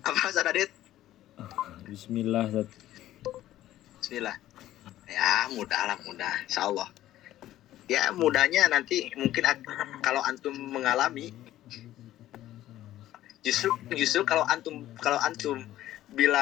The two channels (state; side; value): quieter; right; 13.8 dB